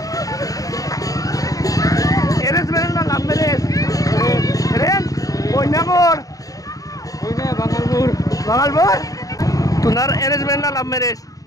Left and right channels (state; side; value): late; right; 0.17 ms